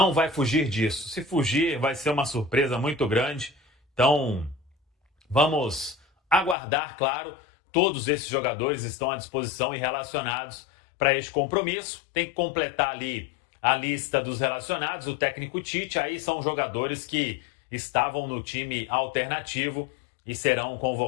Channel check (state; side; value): drops out; right; at 6.6 s